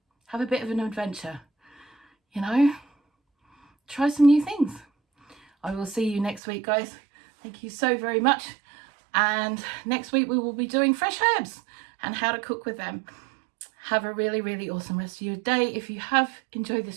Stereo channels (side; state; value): left; drops out; at 6.4 s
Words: Have a bit of an adventure, you know, try some new things. I will see you next week, guys. Thank you so very much. And next week we will be doing fresh herbs and how to cook with them. Have a really, really awesome rest of your day. If you have enjoyed